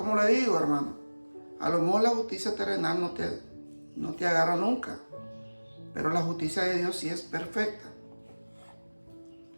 le digo, hermano, a lo mejor la justicia terrenal no te agarra nunca. Pero la justicia de Dios sí es perfecta.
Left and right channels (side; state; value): both; inverted; correlation -1.00